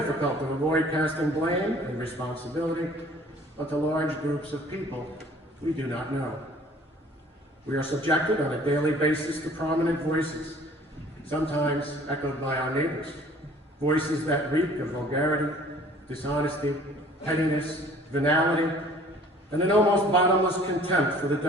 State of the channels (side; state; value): both; normal; correlation 0.52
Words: to avoid casting blame and responsibility onto large groups of people we do not know. We are subjected on a daily basis to prominent voices, sometimes echoed by our neighbors, voices that reek of vulgarity, dishonesty, pettiness, venality, and an almost bottomless contempt for the